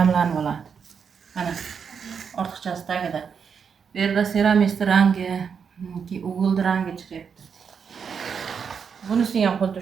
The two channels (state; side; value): quieter; left; 6.6 dB